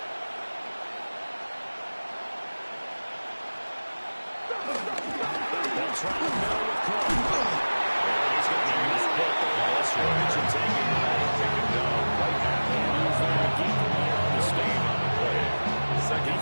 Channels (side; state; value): both; inverted; correlation -1.00